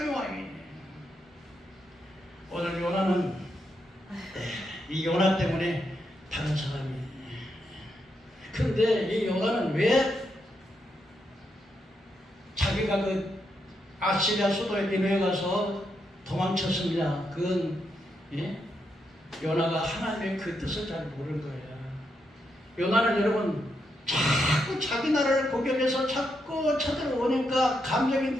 와요. 오늘 요나는 이 요나 때문에 다른 사람이. 그런데 이 요나는 왜 자기가 그 아시리아 수도에 니느웨에 가서 도망쳤습니다. 그건 요나가 하나님의 그 뜻을 잘 모르는 거예요. 요나는 여러분 자꾸 자기 나라를 공격해서 자꾸 쳐들어오니까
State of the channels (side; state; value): both; normal; correlation 0.82